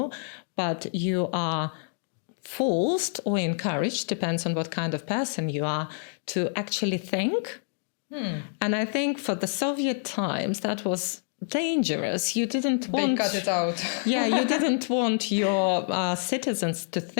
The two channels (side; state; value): right; silent; digital silence